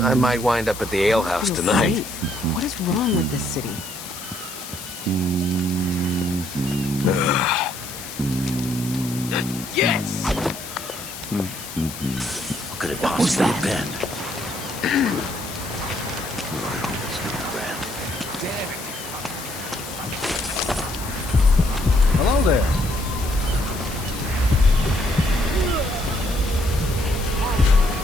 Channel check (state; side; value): noise; left; hiss, 11 dB below the sound